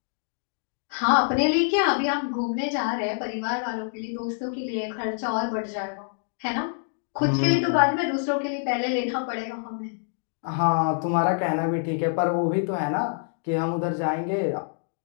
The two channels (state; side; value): silent; right; digital silence